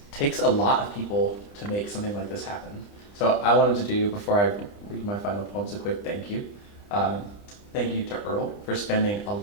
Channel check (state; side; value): late; right; 30 ms